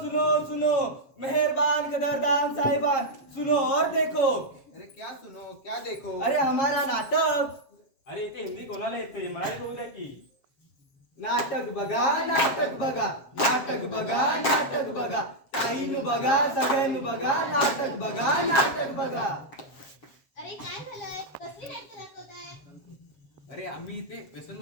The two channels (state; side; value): late; right; 7.4 ms